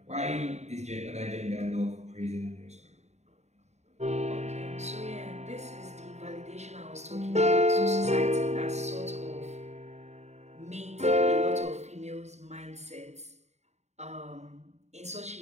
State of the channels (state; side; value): late; left; 0.32 ms